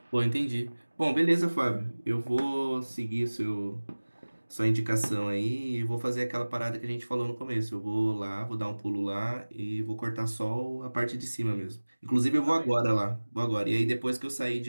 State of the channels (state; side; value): inverted; both; correlation -1.00